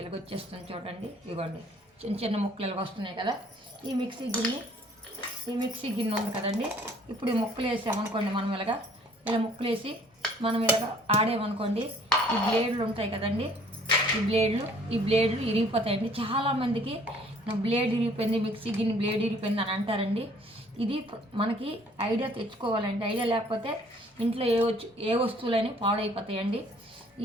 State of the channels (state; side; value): normal; both; correlation 0.57